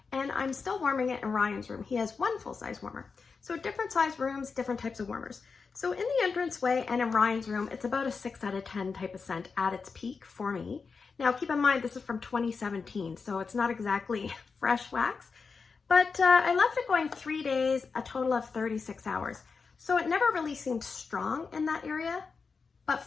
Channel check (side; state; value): right; quieter; 5.0 dB